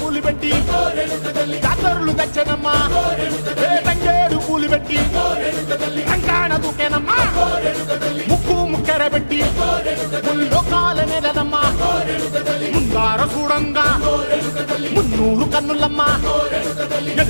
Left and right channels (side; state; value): both; inverted; correlation -1.00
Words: పెట్టి జాతరులు తెచ్చానమ్మా తంగేడు పూలు పెట్టి రంగాణ దూకేనమ్మా ముక్కు ముక్కెర పెట్టి ముల్లోకాల నెలనమ్మా ముందార చూడంగా మున్నూరు కన్నులమ్మా